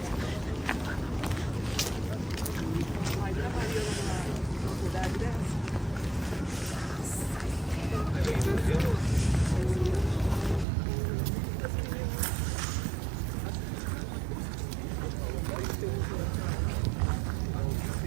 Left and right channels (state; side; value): drops out; left; at 10.7 s